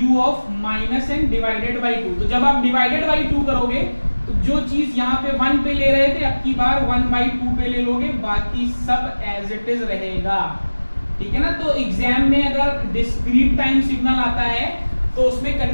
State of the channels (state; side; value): inverted; both; correlation -1.00